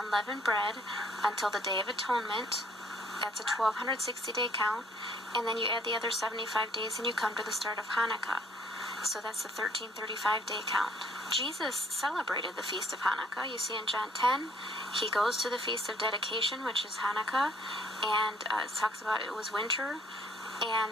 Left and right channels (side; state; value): both; normal; correlation 0.62